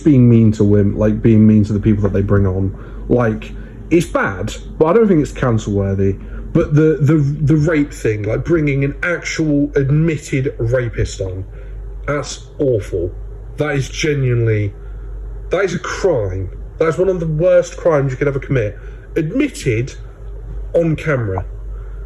being mean to women, like being mean to the people that they bring on, like it's bad, but I don't think it's cancel worthy. But the rape thing, like bringing an actual admitted rapist on, that's awful. That is a crime. That's one of the worst crimes you could ever commit. Admitted on camera.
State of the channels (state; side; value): identical; both; correlation 1.00